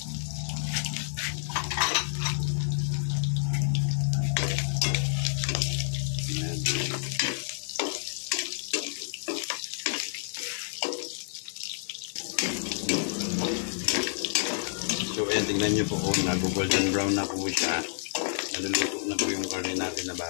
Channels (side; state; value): right; silent; digital silence